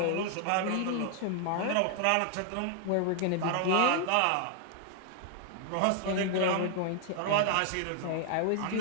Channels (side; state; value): both; different; correlation 0.00